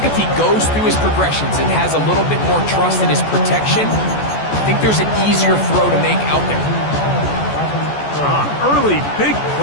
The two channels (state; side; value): late; right; 14 ms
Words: if he goes through his progressions and has a little bit more trust in his protection, I think there's an easier throw to make out there. Early big